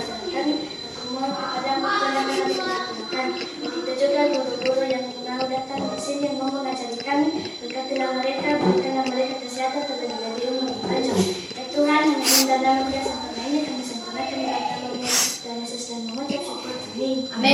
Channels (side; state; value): both; identical; correlation 1.00